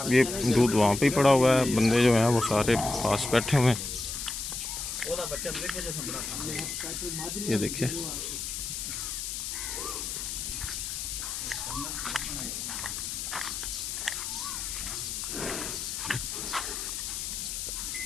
ये दूध वहाँ पे ही पड़ा हुआ है, बंदे जो हैं वो सारे पास बैठे हुए हैं। ये देखिए,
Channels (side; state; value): left; noise; hiss, 4 dB below the sound